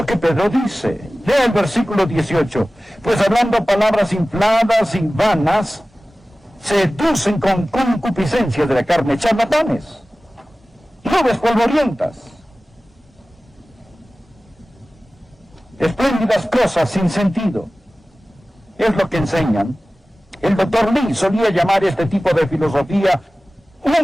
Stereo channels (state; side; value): normal; both; correlation 0.97